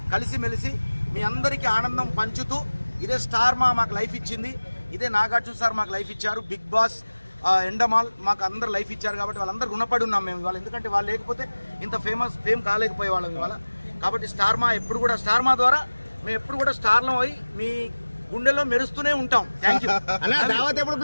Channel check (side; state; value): both; inverted; correlation -1.00